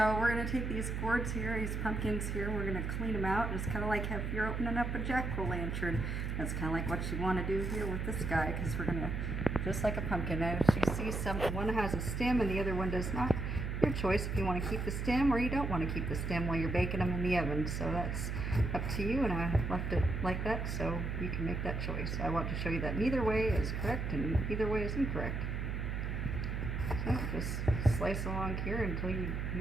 we're going to take these gourds here, these pumpkins here, we're going to clean them out. It's kind of like if you're opening up a jack-o'-lantern. That's kind of like what you want to do here with this guy, because we're going to, just like a pumpkin. Now, you see one has a stem and the other one does not. Your choice if you want to keep the stem or you don't want to keep the stem while you're baking them in the oven. So that's up to you, and I left it like that so you can make that choice. I want to show you that neither way is correct and either way is incorrect. So just slice along here until you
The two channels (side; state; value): right; noise; hum, 2 dB below the sound